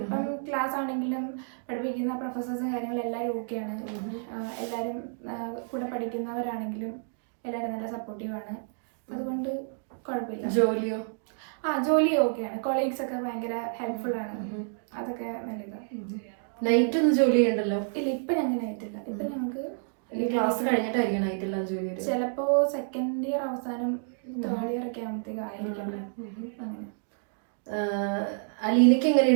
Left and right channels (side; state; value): left; silent; digital silence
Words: ക്ലാസ് ആണെങ്കിലും പഠിപ്പിക്കുന്ന പ്രൊഫസേഴ്സും കാര്യങ്ങളും എല്ലാവരും ഓക്കെയാണ്. എല്ലാവരും കൂടെ പഠിക്കുന്നവരാണെങ്കിലും എല്ലാവരും നല്ല സപ്പോർട്ടീവാണ്. അതുകൊണ്ട് കുഴപ്പമില്ല. ജോലിയോ? ജോലി ഓക്കെയാണ്. കൊളീഗ്സ് ഒക്കെ ഭയങ്കര ഹെൽപ്ഫുൾ ആണ്. അതൊക്കെ നല്ലതാണ്. നൈറ്റ് ഒന്നും ജോലി ചെയ്യണ്ടല്ലോ? ഇല്ല, ഇപ്പം ഞങ്ങൾക്ക് നൈറ്റില്ല. ഇപ്പം ഞങ്ങൾക്ക് ക്ലാസ് കഴിഞ്ഞിട്ടായിരിക്കും നൈറ്റില്ല ജോലി? ചിലപ്പോൾ സെക്കൻഡ് ഇയർ അവസാനം തേർഡ് ഇയർ ഒക്കെ ആകുമ്പോഴത്തേക്ക് ആയിരിക്കും. അങ്ങനെ അലീനയ്ക്ക്